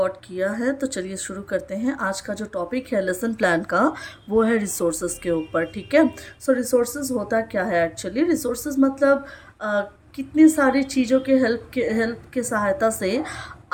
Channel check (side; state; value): both; identical; correlation 1.00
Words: किया है। तो चलिए शुरू करते हैं। आज का जो टॉपिक है लेसन प्लान का, वो है रिसोर्सेज के ऊपर। ठीक है। सो रिसोर्सेज होता क्या है एक्चुअली? रिसोर्सेज मतलब कितनी सारी चीज़ों के हेल्प के सहायता से